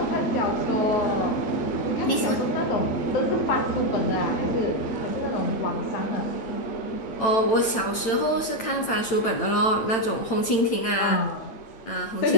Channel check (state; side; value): late; right; 8.9 ms